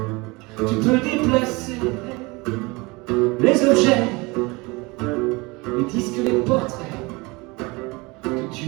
Tu peux déplacer les objets, les disques, les portraits que tu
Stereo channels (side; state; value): left; quieter; 24.9 dB